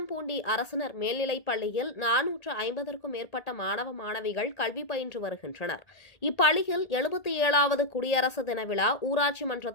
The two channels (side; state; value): right; late; 1.8 ms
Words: அரசினர் மேல்நிலைப் பள்ளியில் 450க்கும் மேற்பட்ட மாணவ மாணவிகள் கல்வி பயின்று வருகின்றனர். இப்பள்ளியில் 77வது குடியரசு தின விழா ஊராட்சி மன்ற